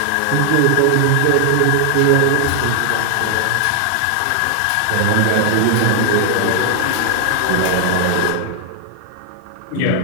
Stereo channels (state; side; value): different; both; correlation 0.00